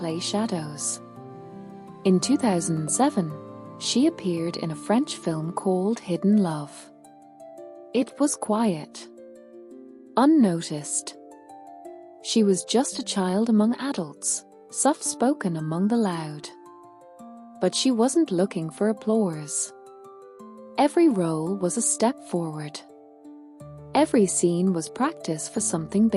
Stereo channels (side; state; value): both; identical; correlation 1.00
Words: shadows. In 2007, she appeared in a French film called Hidden Love. It was quiet, unnoticed. She was just a child among adults, soft-spoken among the loud. But she wasn't looking for applause. Every role was a step forward. Every scene was practice for something